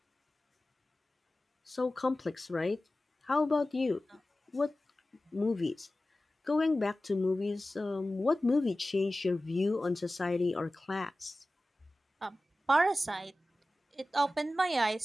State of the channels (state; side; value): normal; both; correlation 0.96